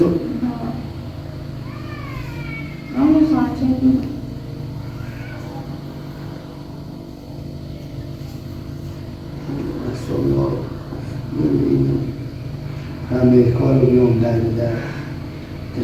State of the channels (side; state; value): both; identical; correlation 1.00